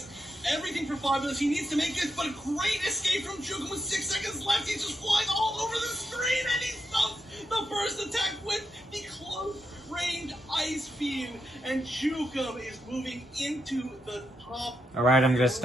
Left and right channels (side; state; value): both; normal; correlation 0.83